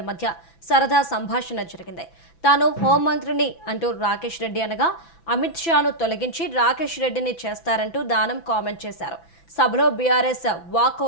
మధ్య సరదా సంభాషణ జరిగింది. తాను హోంమంత్రిని అంటూ రాకేష్ రెడ్డి అనగా అమిత్ షాను తొలగించి రాకేష్ రెడ్డిని చేస్తారంటూ దానం కామెంట్ చేశారు. సభలో బీఆర్ఎస్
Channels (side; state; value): right; late; 6.0 ms